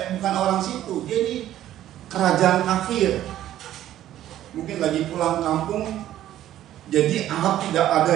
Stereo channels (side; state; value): left; quieter; 12.6 dB